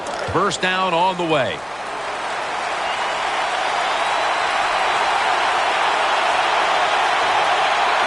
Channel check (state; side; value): noise; left; rumble, 29 dB below the sound